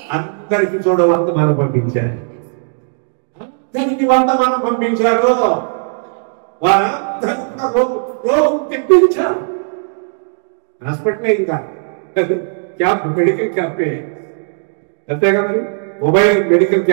అందరికి చూడవంతమానం పంపించారు. అందరికి వంతమానం పంపించారు. వారందరూ రోగం తెప్పించారు. హాస్పిటల్ ఇంకా క్యాంప్, మెడికల్ క్యాంపే అంతే కదండి. మొబైల్ మెడికల్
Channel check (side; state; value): left; silent; digital silence